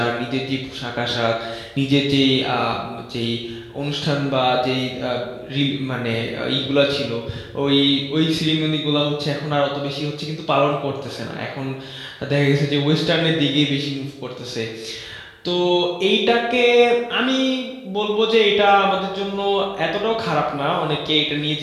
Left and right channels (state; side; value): identical; both; correlation 1.00